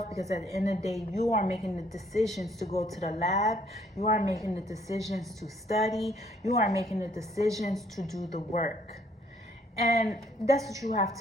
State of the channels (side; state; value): both; normal; correlation 0.65